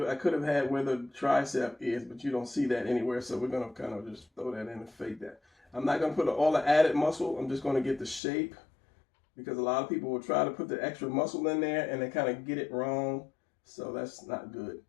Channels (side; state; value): right; drops out; at 8.2 s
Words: I could have had where the tricep is, but you don't see that anywhere. So we're gonna kind of just throw that in and fake that. I'm not gonna put all the added muscle. I'm just gonna get the shape, because a lot of people will try to put the extra muscle in there and they kind of get it wrong. So that's not good.